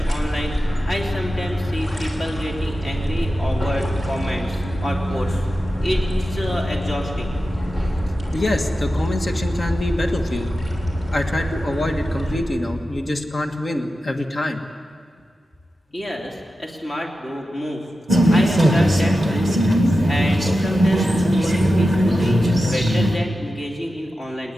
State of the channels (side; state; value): both; normal; correlation 0.92